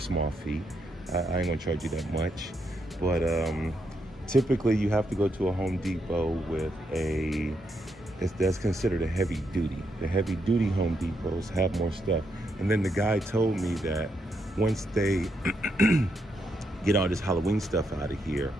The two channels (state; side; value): normal; both; correlation 0.79